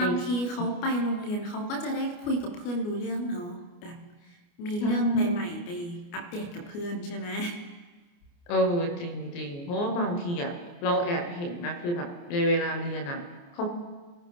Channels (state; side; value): late; right; 29 ms